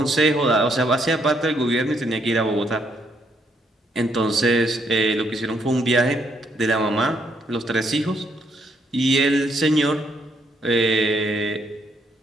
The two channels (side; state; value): both; normal; correlation 0.72